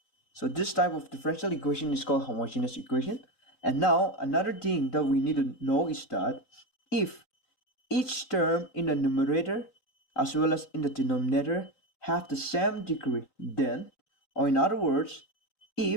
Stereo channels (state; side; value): late; right; 3.9 ms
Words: So this type of differential equation is called homogeneous equation. And now another thing that we need to know is that if each term in the numerator as well as in the denominator have the same degree, then, or in other words,